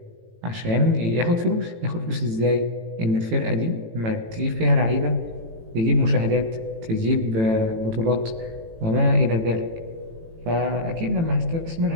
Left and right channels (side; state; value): left; late; 18 ms